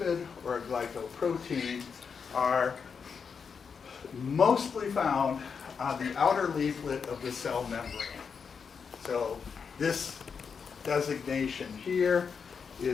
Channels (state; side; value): quieter; right; 6.0 dB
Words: or a glycoprotein, are mostly found on the outer leaflet of the cell membrane. So this designation here